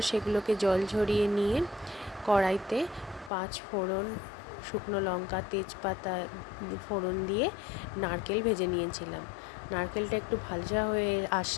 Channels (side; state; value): right; drops out; at 3.3 s